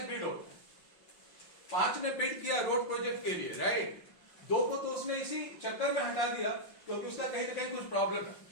बिड होता है। 5 ने बिड किया रोड प्रोजेक्ट के लिए, राइट, 2 को तो उसने इसी चक्कर में हटा दिया क्योंकि उसका कहीं ना कहीं कुछ प्रॉब्लम है,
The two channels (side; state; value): right; late; 5.7 ms